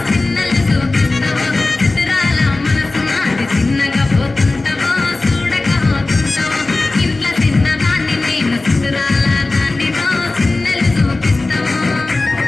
చిన్నలు చూపిస్తావు చిత్రాల మనసు నాది చిన్నగా పోతుంటావు చూడగా పోతుంటావు ఇంట్లో చిన్నదాన్ని నేను చిత్రాల దానితో చిన్నలు చూపిస్తావు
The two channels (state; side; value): quieter; right; 3.2 dB